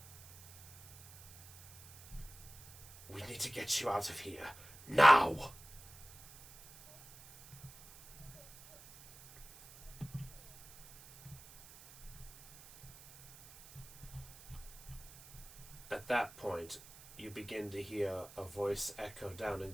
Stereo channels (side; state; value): right; noise; hiss, 19 dB below the sound